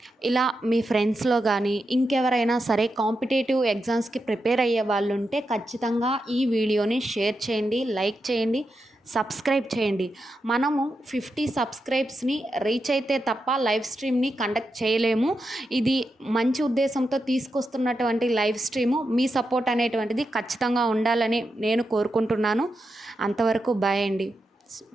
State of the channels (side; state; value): both; normal; correlation 0.87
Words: ఇలా మీ ఫ్రెండ్స్‌లో గానీ, ఇంకెవరైనా సరే కాంపిటీటివ్ ఎగ్జామ్స్‌కి ప్రిపేర్ అయ్యే వాళ్ళుంటే ఖచ్చితంగా ఈ వీడియోని షేర్ చేయండి, లైక్ చేయండి, సబ్స్క్రైబ్ చేయండి. మనము 50 సబ్స్క్రైబ్స్‌ని రీచ్ అయితే తప్ప లైవ్ స్ట్రీమ్‌ని కండక్ట్ చేయలేము. ఇది మంచి ఉద్దేశంతో తీసుకొస్తున్నటువంటి లైవ్ స్ట్రీము. మీ సపోర్ట్ అనేటువంటిది ఖచ్చితంగా ఉండాలని నేను కోరుకుంటున్నాను. అంతవరకు బాయ్ అండి.